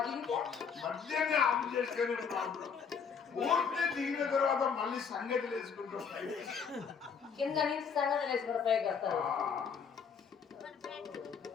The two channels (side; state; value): right; quieter; 6.3 dB